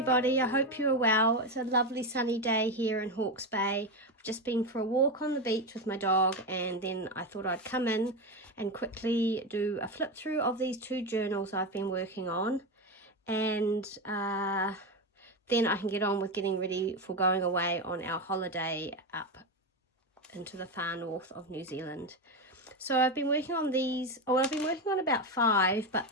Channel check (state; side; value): normal; both; correlation 0.14